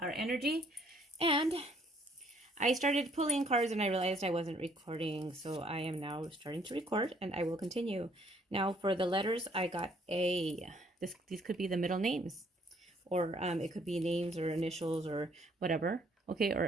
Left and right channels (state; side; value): normal; both; correlation 0.64